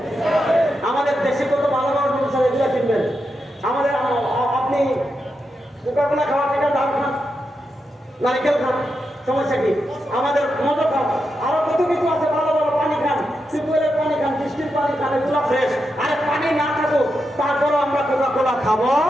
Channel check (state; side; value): normal; both; correlation 0.86